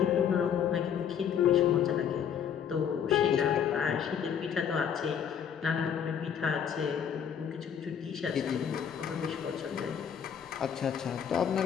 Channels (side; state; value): right; quieter; 8.1 dB